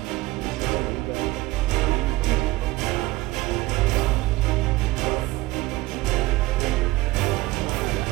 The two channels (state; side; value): quieter; left; 19.2 dB